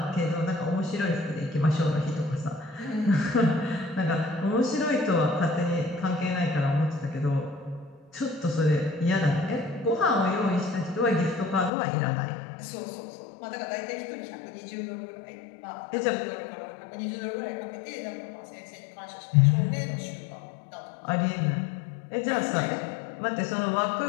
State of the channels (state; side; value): drops out; right; at 11.7 s